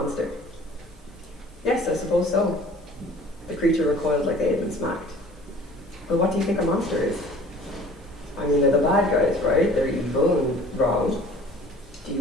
Yes, I suppose so. The creature recoiled like they had been smacked. But what do you think a monster is? I mean, they're the bad guys, right? They're evil and wrong. Do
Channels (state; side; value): normal; both; correlation 0.49